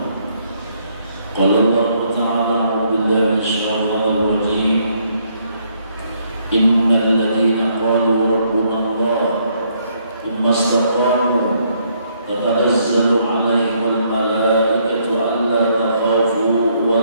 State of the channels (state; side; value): inverted; both; correlation -0.71